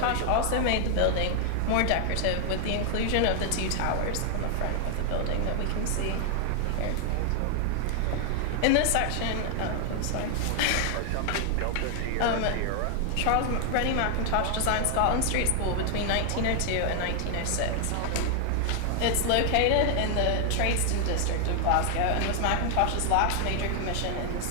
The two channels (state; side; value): different; both; correlation 0.00